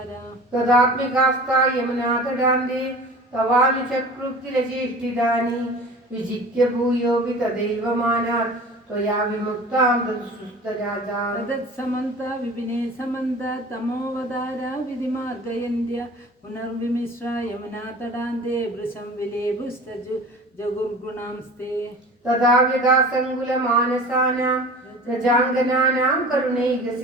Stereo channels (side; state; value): both; normal; correlation 0.40